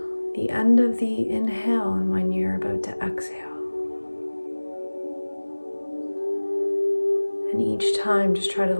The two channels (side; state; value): both; inverted; correlation -1.00